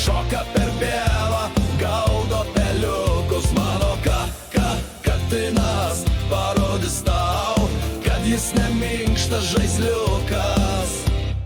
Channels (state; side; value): identical; both; correlation 1.00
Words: per pievą, gaudo peliukus. Mano katinas parodys tau, kad jis neminkštas žaisliukas.